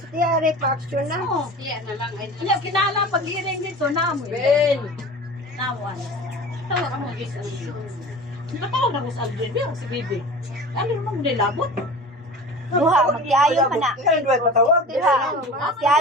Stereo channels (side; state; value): both; normal; correlation 0.37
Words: Tiya aray pa-action na. Oo. Iya, kinala pag-iring dito, namoy. Ben! Nawan. Tawag ako mag-isa. Nakatawag na ko sa Aldrin, pero si Bibi. Ano naman nilabot? Duha magtiayon man na. Kaya duhay patawag. Duha.